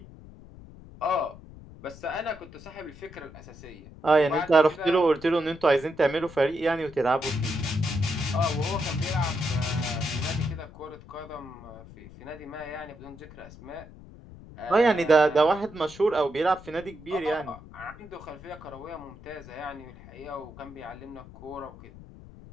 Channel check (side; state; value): left; noise; rumble, 18 dB below the sound